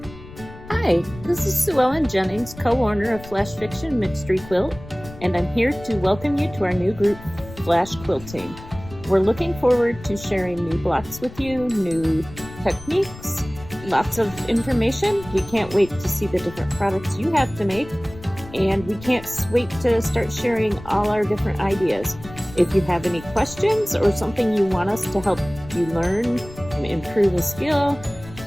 Hi, this is Sue Ellen Jennings, co-owner of Flash Fiction Mystery Quilt, and I'm here to welcome you to our new group, Flash Quilting. We're looking forward to sharing new blocks with you, new techniques, lots of information. We can't wait to see the different products you have to make, and we can't wait to start sharing all our different ideas. If you have any questions or something you want us to help you learn and improve a skill,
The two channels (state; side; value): noise; left; rumble, 16 dB below the sound